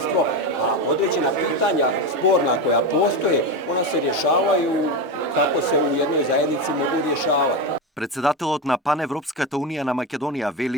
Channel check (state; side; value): normal; both; correlation 0.16